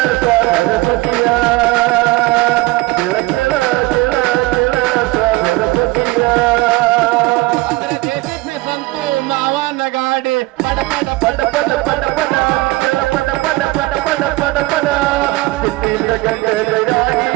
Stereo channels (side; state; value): left; quieter; 21.0 dB